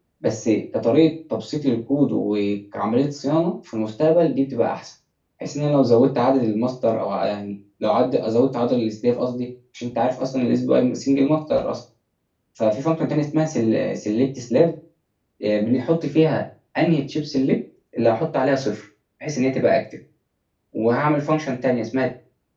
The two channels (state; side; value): identical; both; correlation 1.00